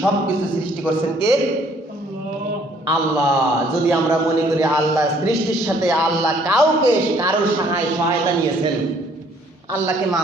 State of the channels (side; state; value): both; normal; correlation 0.62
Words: সব কিছু সৃষ্টি করছেন কে? আল্লাহ। যদি আমরা মনে করি আল্লাহ সৃষ্টির সাথে আল্লাহ কারোর সহায়তা নিয়েছেন, আল্লাহকে